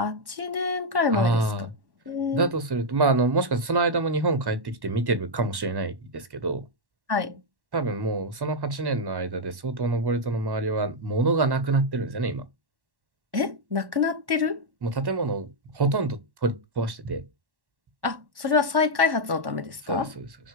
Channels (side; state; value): left; late; 1.1 ms